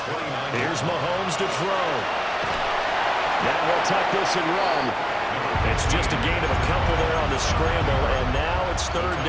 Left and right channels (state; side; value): identical; both; correlation 1.00